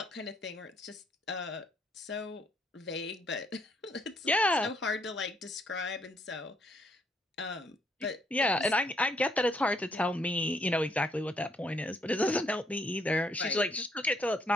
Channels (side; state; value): both; normal; correlation 0.70